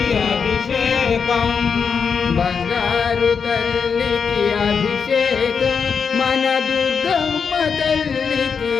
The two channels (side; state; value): right; quieter; 6.1 dB